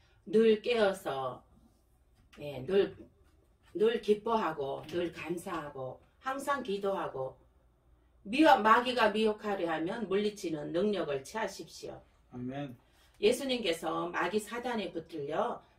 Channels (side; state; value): both; identical; correlation 1.00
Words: 늘 깨어서 늘 기뻐하고 늘 감사하고 항상 기도하고 마귀가 미혹하려 하면 물리치는 능력을 취하십시오. 아멘. 예수님께서 마귀 사단에 붙들려